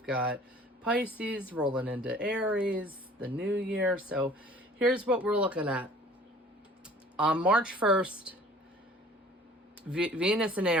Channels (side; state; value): both; normal; correlation 0.50